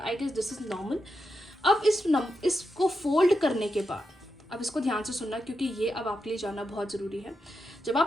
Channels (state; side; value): normal; both; correlation 0.86